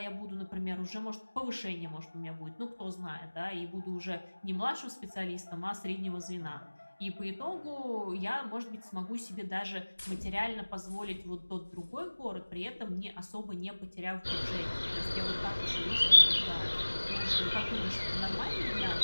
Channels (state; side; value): inverted; both; correlation -1.00